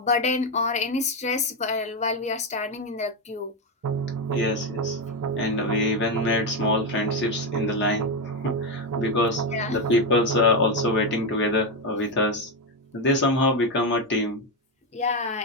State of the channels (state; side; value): normal; both; correlation 0.08